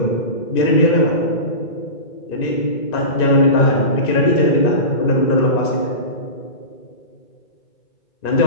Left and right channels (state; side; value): late; right; 2.6 ms